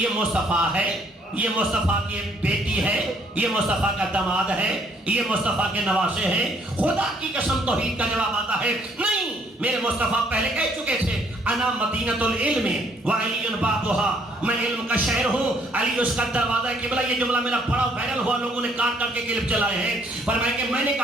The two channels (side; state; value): both; normal; correlation 0.66